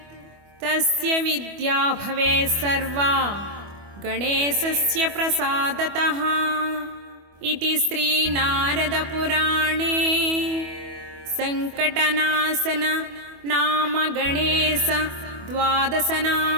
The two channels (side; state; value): left; late; 25 ms